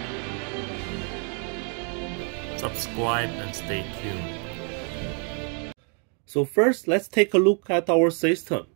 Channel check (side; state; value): left; quieter; 39.8 dB